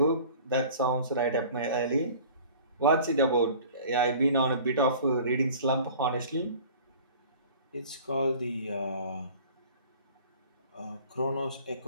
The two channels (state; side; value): inverted; both; correlation -0.46